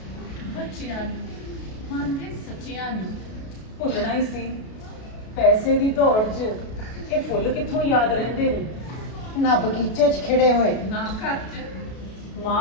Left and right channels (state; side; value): late; right; 33 ms